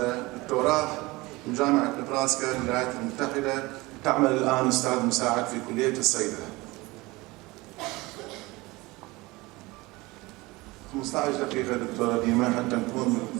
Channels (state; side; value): quieter; left; 22.0 dB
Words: دكتوراه من جامعة نبراسكا بالولايات المتحدة. تعمل الآن أستاذ مساعد في كلية الصيدلة. 15 دقيقة دكتورة ديما حتى نكون